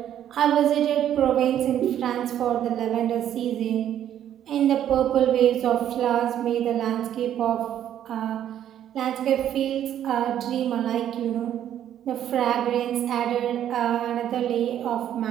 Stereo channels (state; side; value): quieter; left; 10.6 dB